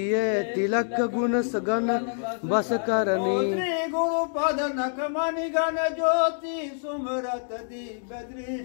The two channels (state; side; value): silent; right; digital silence